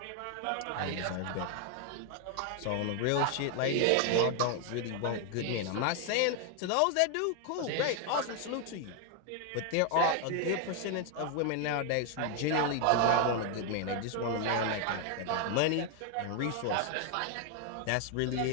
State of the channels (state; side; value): different; both; correlation 0.01